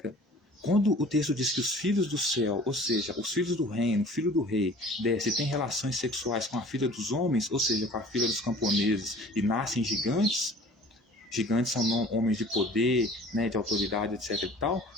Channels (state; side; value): normal; both; correlation 0.47